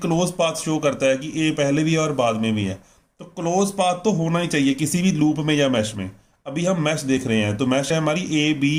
पाथ शो करता है कि ए पहले भी है और बाद में भी है, तो क्लोज पाथ तो होना ही चाहिए किसी भी लूप में या मैश में। अभी हम मैश देख रहे हैं, तो मैश है हमारी ए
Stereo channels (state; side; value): identical; both; correlation 1.00